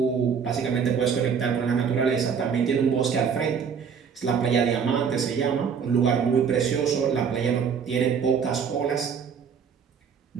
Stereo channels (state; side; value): quieter; left; 6.7 dB